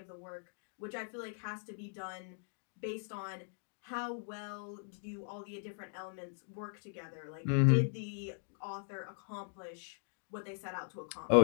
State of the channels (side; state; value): right; silent; digital silence